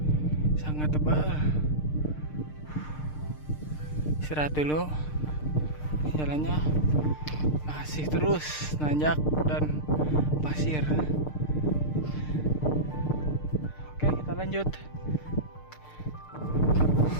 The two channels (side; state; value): right; late; 6.6 ms